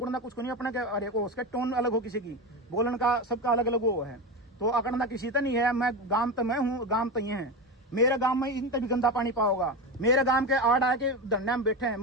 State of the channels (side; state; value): both; normal; correlation 0.19